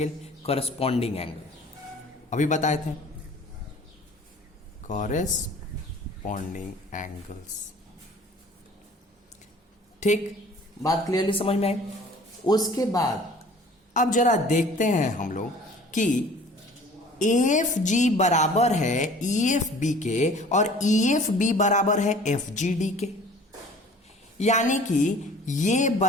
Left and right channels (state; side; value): normal; both; correlation 0.48